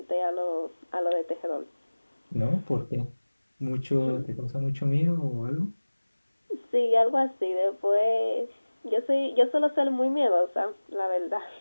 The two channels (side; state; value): both; inverted; correlation -1.00